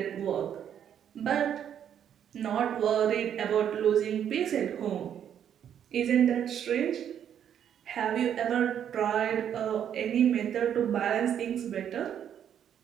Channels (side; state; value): left; quieter; 9.3 dB